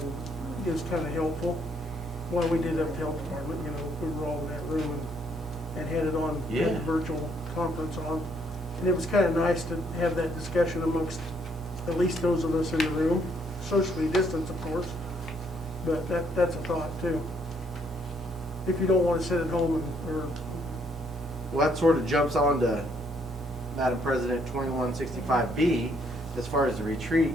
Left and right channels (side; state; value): both; normal; correlation 0.69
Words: it was kind of helpful. Well, we did have the health department, you know, we were all in that room and had it on, had Yeah. the virtual conference on. And it was kind of nice to have that discussion amongst at least those of us in the room, socially distanced, of course, but that's a thought too. If you don't want to sit at home or Well, that sort of jumps on to Madam President 2165B as far as the